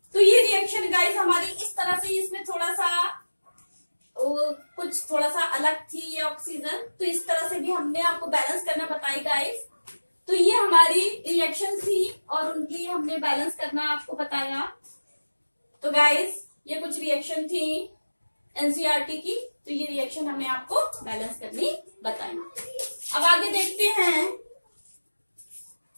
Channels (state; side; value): inverted; both; correlation -1.00